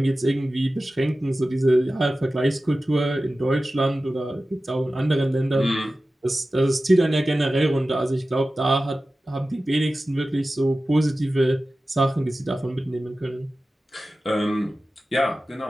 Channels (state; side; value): normal; both; correlation 0.95